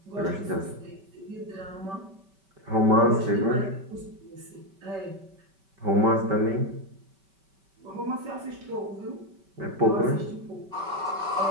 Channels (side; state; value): left; late; 5.2 ms